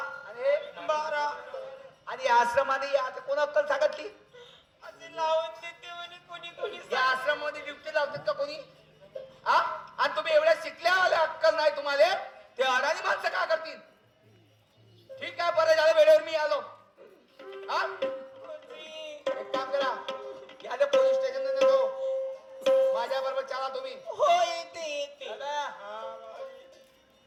आणि हे? 12. आणि या आश्रमामध्ये आता कोण अक्कल सांगितली? असे लावून देते म्हणे कोणी या आश्रमामध्ये ड्युटी लावतात का कोणी? हा? आणि तुम्ही एवढ्या शिकल्या आल्या अक्कल नाही तुम्हाला, ते अडाणी माणसं का करतील? ठीक आहे, बरं झालं वेळेवर मी आलो. हा? एक काम करा, या पोलीस स्टेशन जातो, माझ्या बरोबर चला तुम्ही. हो येते. चला.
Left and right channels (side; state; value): both; identical; correlation 1.00